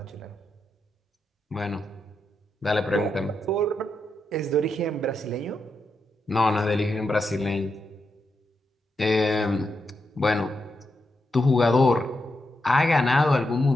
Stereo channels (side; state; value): both; normal; correlation 0.84